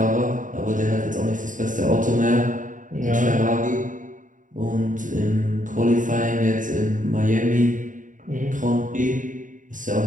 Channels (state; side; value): late; left; 0.38 ms